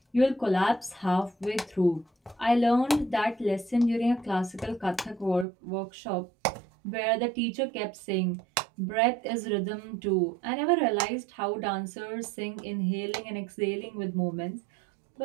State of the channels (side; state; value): left; drops out; at 5.5 s